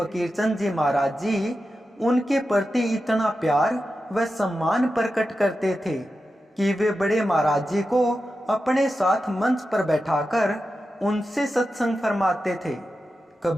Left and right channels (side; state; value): both; normal; correlation 0.91